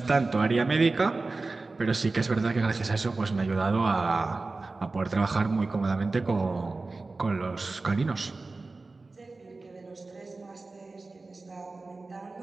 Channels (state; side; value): quieter; left; 3.5 dB